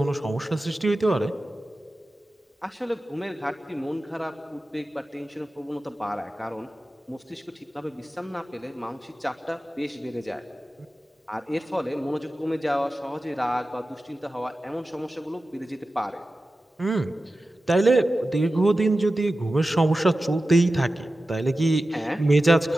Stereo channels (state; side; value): normal; both; correlation 0.94